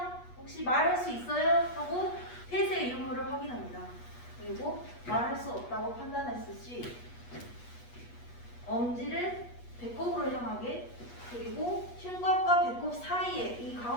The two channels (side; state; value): right; late; 8.3 ms